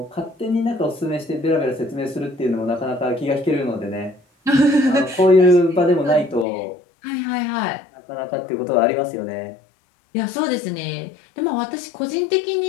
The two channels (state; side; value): drops out; right; at 6.5 s